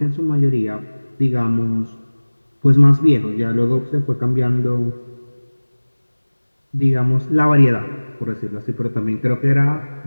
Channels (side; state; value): both; inverted; correlation -1.00